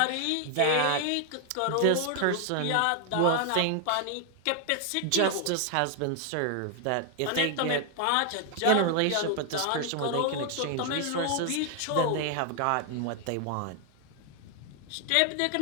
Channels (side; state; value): both; different; correlation 0.00